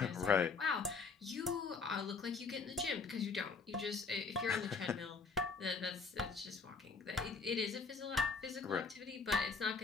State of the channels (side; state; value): right; quieter; 4.7 dB